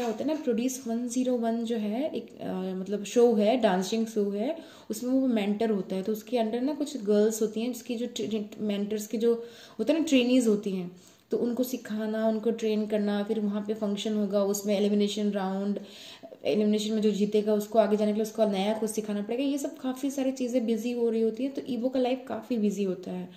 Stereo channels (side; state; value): both; identical; correlation 1.00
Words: होता है ना, प्रोड्यूस 101 जो है एक मतलब शो है, डांसिंग शो है, उसमें वो मेंटर होता है। तो उसके अंडर ना कुछ गर्ल्स होती हैं जिसकी जो मेंटर्स की जो होता है ना ट्रेनीज होती हैं, तो उनको सिखाना, उनको ट्रेन करना, फिर वहाँ पे फंक्शन होगा, उसमें एलिमिनेशन राउंड, एलिमिनेशन में जो जीतेगा उसको आगे जाने के लिए उसको नया कुछ सिखाना पड़ेगा। ये सब काफ़ी सारी चीज़ें बिजी हो रही होती है, तो ईबो का लाइफ काफ़ी बिजी होता है।